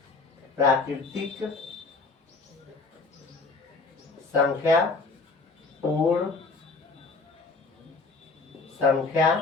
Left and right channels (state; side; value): quieter; right; 4.0 dB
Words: प्राकृतिक संख्या पूर्ण संख्या